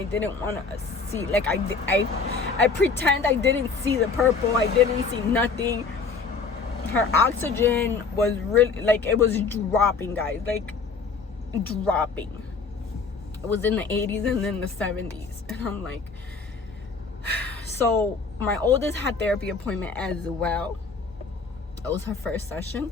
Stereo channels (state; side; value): quieter; right; 4.8 dB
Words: didn't want to see. Like, I pretend I didn't see the purple. I didn't see nothing. Her oxygen was really, like, it was dropping, guys. Like, dropping. It was in the 80s and then the 70s. And I'm like, so my oldest had therapy appointment as well. It was her first session.